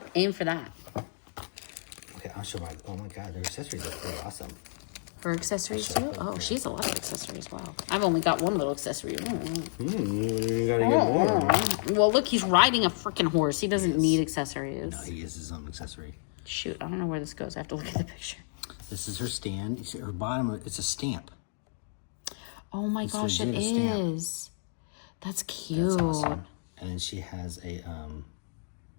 aim for that. Okay, I'll show my, oh my god, their accessories are pretty awesome. Her accessories too? Oh, she has a lot of accessories. Wow. I've only got one little accessory. You gotta get more. Well, look, he's riding a freaking horse. He doesn't need accessories. No, he is his own accessory. Shoot, I don't know where this goes. I have to look at the picture. This is her stand. You see her bottom, it's a stamp. Oh my gosh, it is. That's cute. That's awesome. And then she has a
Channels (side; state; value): right; silent; digital silence